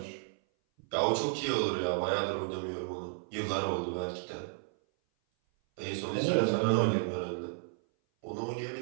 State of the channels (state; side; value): silent; left; 56 dB below the other